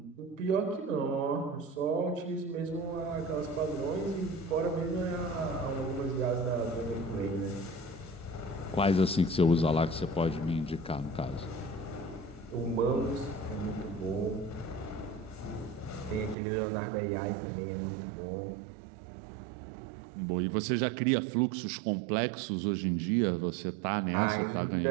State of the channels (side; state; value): left; drops out; at 16.4 s